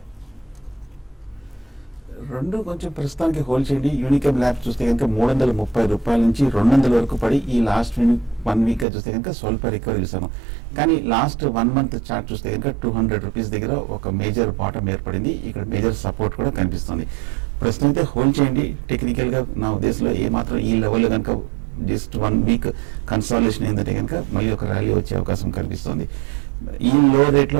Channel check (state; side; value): drops out; left; at 8.8 s